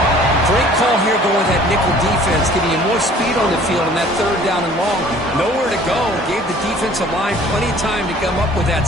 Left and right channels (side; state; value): both; normal; correlation 0.52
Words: Great call here going with that nickel defense, giving you more speed on the field on that third down and long. Nowhere to go. Gave the defensive line plenty of time to come up with that